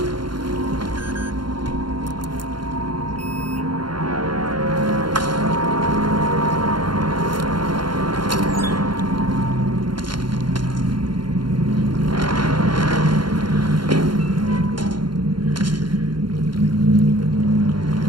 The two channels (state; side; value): late; left; 0.72 ms